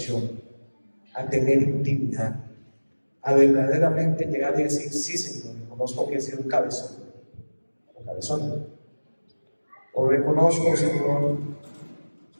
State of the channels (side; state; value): both; inverted; correlation -1.00